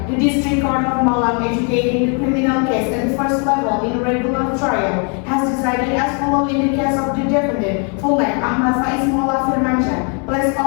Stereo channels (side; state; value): right; quieter; 38.6 dB